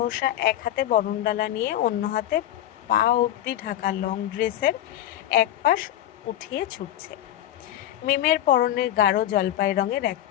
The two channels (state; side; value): quieter; right; 12.5 dB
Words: এক হাতে বরণডালা নিয়ে অন্য হাতে পা অবধি ঢাকা লং ড্রেসের এক পাশ উঠিয়ে ছুটছে। মিমের পরনের গাঢ় জলপাই রঙের